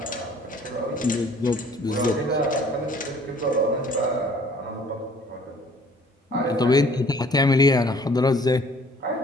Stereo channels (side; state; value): both; normal; correlation 0.56